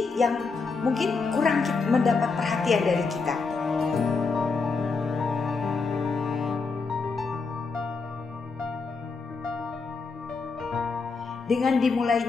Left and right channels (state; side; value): quieter; right; 4.5 dB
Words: yang mungkin kurang mendapat perhatian dari kita. Dengan